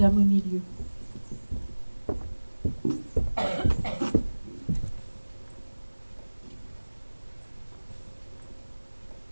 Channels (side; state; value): both; inverted; correlation -1.00